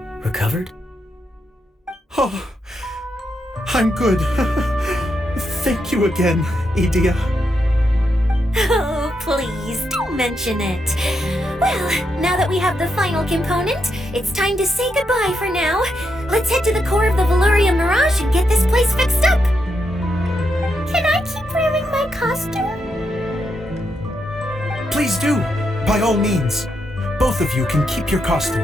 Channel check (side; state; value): both; normal; correlation 0.82